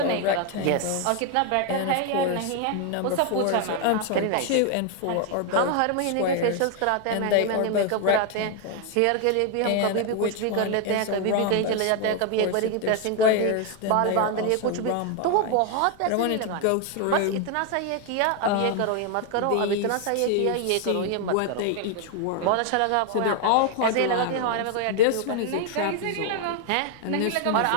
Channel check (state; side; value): different; both; correlation 0.01